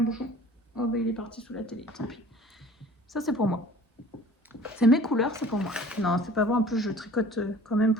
bouchon. Oh bah il est parti sous la télé, tant pis. Ça c'est pour moi. C'est mes couleurs, c'est pour moi. Non, c'est pas vrai, en plus je tricote quand même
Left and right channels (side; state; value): both; normal; correlation 0.46